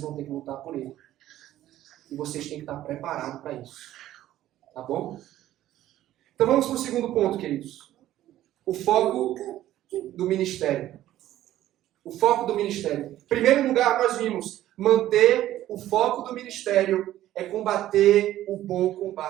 vão ter que lutar por ele. E vocês têm que estar preparados para isso. Tá bom? Então vamos para o segundo ponto, queridos. O foco do ministério. O foco do ministério. Em primeiro lugar, nós vimos, manter o foco do ministério é combater o bom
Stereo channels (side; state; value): left; quieter; 13.5 dB